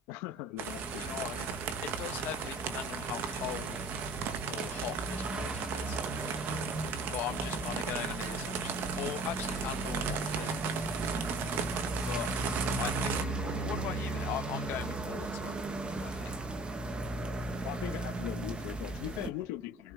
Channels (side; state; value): both; normal; correlation 0.48